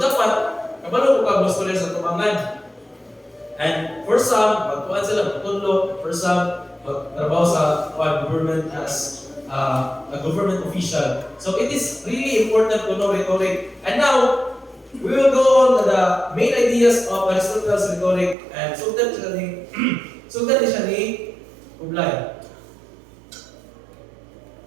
dapat kabalo ko ka scholar sa tumangan. And for some, magkuan sila pagtudlo, for some magtrabaho sa government as a government official. So it is really important to know rhetoric. And now we will go on to the main ideas of Aristotle's rhetoric, and sundan siya ni Ublay.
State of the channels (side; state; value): left; drops out; at 18.4 s